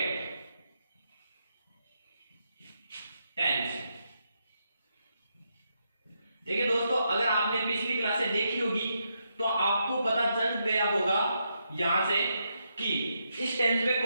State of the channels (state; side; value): inverted; both; correlation -0.81